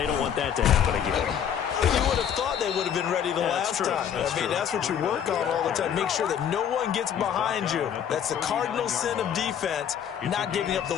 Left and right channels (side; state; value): right; quieter; 8.8 dB